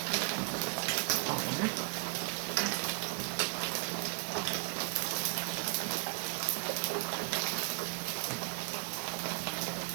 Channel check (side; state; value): left; quieter; 36.7 dB